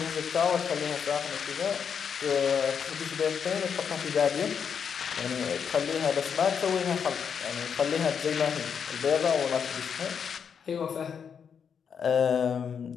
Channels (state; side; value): quieter; right; 7.1 dB